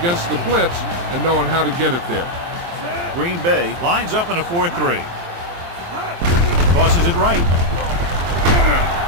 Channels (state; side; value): late; left; 23 ms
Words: the blitz and knowing how to get it there. Green Bay lines up in a 4-3. Tosses it right.